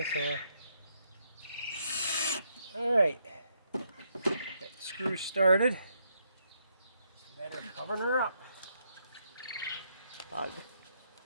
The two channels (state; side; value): inverted; both; correlation -0.76